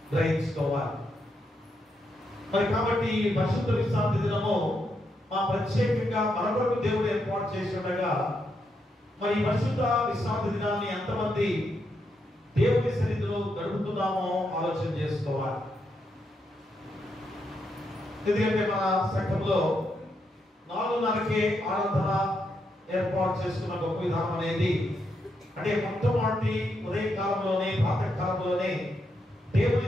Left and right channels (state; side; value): normal; both; correlation 0.81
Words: గ్రహించుకోవాలి. మరి కాబట్టి ఈ పరిశుద్ధ విశ్రాంతి దినము ప్రత్యేకంగా మన కొరకు దేవుడు ఏర్పాటు చేసి ఉండగా, మరి ఈ పరిశుద్ధ విశ్రాంతి దినాన్ని ఎంతమంది దేవుని సన్నిధిలో గడుపుతున్నామో ఆలోచన చేసుకోవాలి. ఎందుకంటే మన సంఘంలో 4:30కే ఆరాధన ఏర్పాటు చేసుకున్న గొప్ప విధానం అనేది, అంటే మొట్టమొదటి ఉదయకాలంలోనే, ప్రాతకాలంలోనే